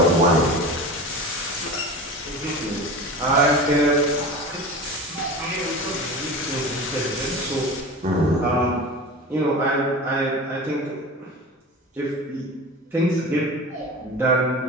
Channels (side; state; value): both; normal; correlation 0.32